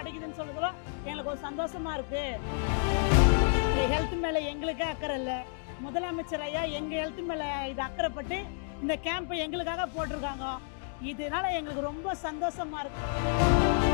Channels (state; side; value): silent; right; digital silence